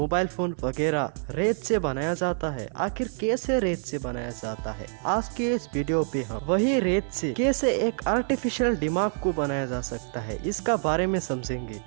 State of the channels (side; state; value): left; silent; digital silence